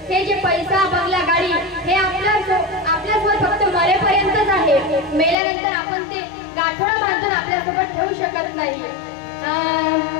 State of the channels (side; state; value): right; drops out; at 5.4 s